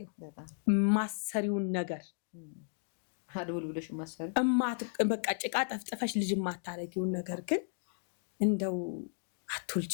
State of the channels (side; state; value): right; silent; digital silence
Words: ማሰሪውን ነገር አድውል ብለሽ ማሰሪ በቃ ጭቃ ጠፍጥፈሽ ልጅ ማታረጊውን ነገር ግን እንደው